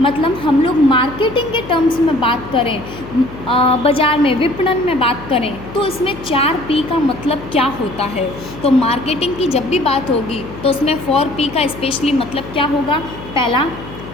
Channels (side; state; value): left; noise; hum, 14 dB below the sound